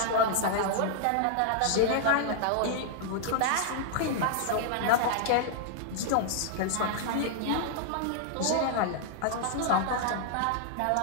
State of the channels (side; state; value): both; different; correlation -0.01